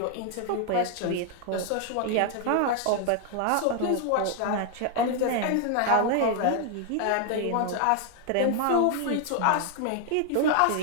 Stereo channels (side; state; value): both; different; correlation 0.00